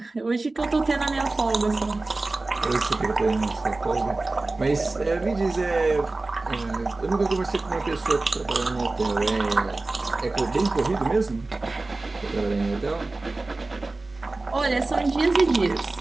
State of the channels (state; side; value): quieter; left; 3.2 dB